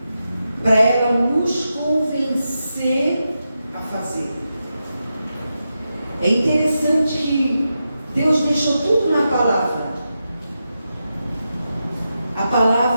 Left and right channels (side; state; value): both; inverted; correlation -0.89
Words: para ela nos convencer a fazer. É interessante que Deus deixou tudo na palavra. A